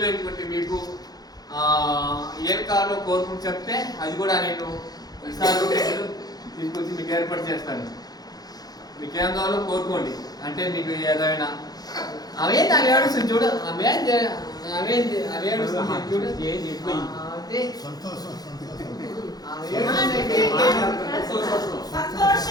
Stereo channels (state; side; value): late; right; 0.19 ms